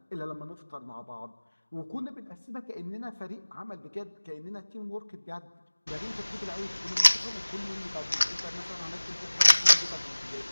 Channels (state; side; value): inverted; both; correlation -1.00